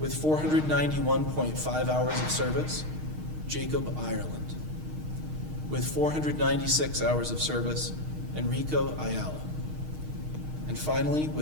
491.5 hours of service, Jacob Ireland. With 496 hours of service, Enrico Ayala. And finally,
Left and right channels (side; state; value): left; late; 6.5 ms